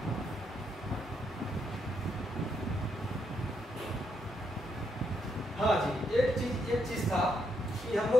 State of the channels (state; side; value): normal; both; correlation 0.78